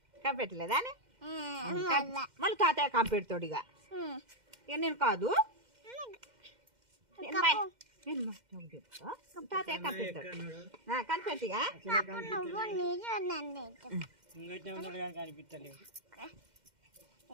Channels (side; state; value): left; late; 2.1 ms